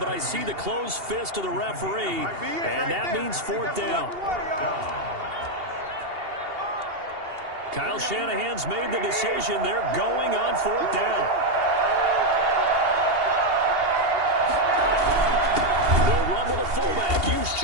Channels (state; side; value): late; left; 2.8 ms